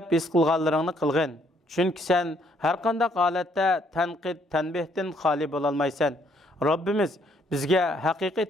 his qilganlaringni qilgin. Chunki sen har qanday holatda tanqid, tanbehdan xoli bo'la olmaysan. Robbimiz bizga haqiqiy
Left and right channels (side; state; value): both; normal; correlation 0.68